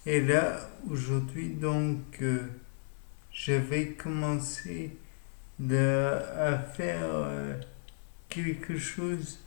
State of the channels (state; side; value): silent; right; digital silence